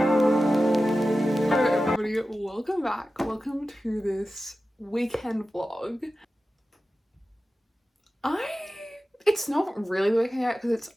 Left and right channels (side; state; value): both; normal; correlation 0.94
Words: Hello everybody, welcome back. Welcome to this weekend vlog. It's not really the weekend yet because it's